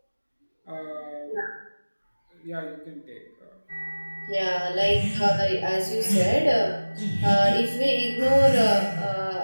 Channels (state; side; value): inverted; both; correlation -1.00